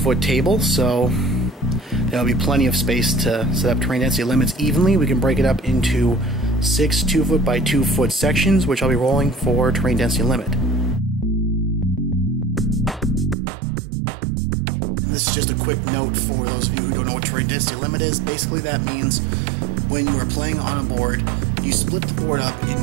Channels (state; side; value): drops out; left; at 13.4 s